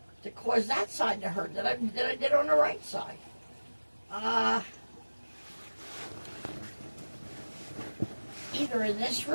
to cause that side to hurt that I did on the right side. Either in this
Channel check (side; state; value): both; inverted; correlation -1.00